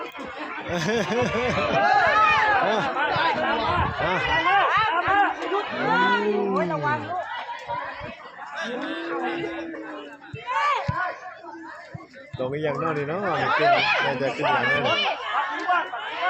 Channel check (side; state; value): both; identical; correlation 1.00